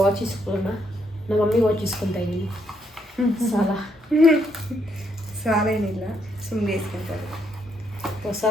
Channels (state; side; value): normal; both; correlation 0.75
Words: ಇಸ್ಕೊಳ್ಳೋಣ. ನಮ್ಮ ಮಮ್ಮಿ ವಾಚ್ ಇಸ್ಕೊತಾ ಇದ್ದೀನಿ. ಸಾಲ ಏನಿಲ್ಲ, ಸುಮ್ಮನೆ ಇಸ್ಕೊತಾರೆ. ಹೊಸ